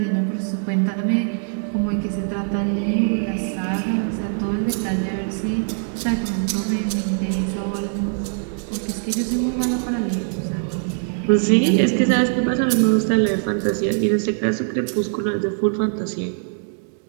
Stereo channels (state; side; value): silent; left; 64 dB below the other